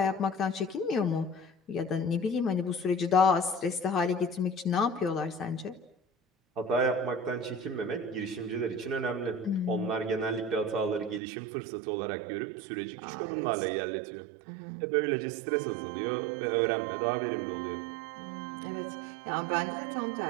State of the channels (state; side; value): drops out; left; at 11.2 s